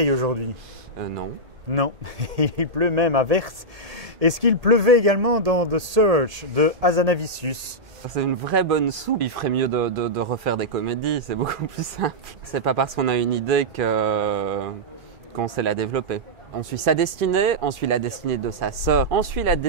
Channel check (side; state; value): left; late; 1.7 ms